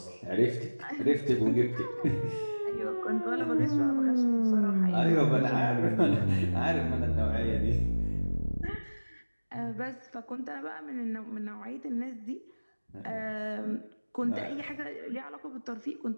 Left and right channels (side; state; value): both; inverted; correlation -1.00